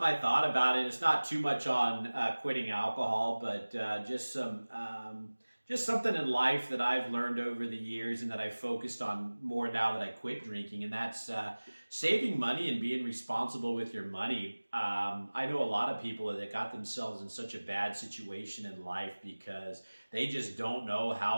I thought about, and it's not too much on quitting alcohol, but just something in life that I've learned over the years and that I focused on more now that I quit drinking, and that's saving money and being responsible with your money. I know a lot of people that got themselves in such a bad situation in life because they just don't know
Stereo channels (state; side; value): inverted; both; correlation -1.00